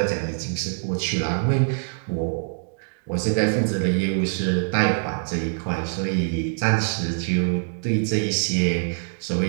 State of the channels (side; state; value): left; silent; digital silence